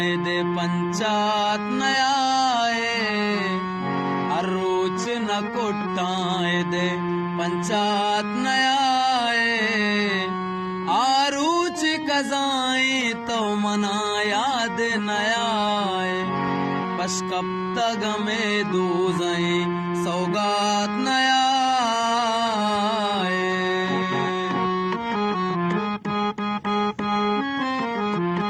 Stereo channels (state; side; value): identical; both; correlation 1.00